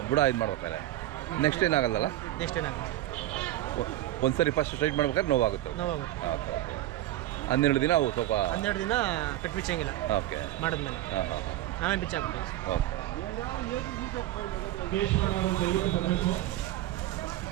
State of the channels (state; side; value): quieter; left; 14.6 dB